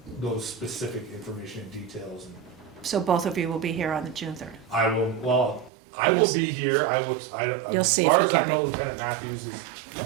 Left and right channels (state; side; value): drops out; left; at 5.7 s